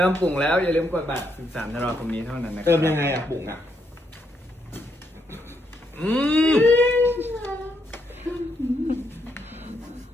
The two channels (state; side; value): normal; both; correlation 0.77